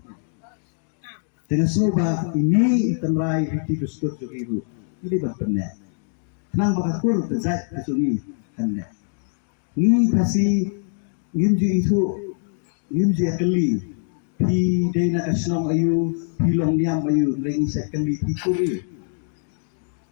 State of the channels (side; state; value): right; silent; digital silence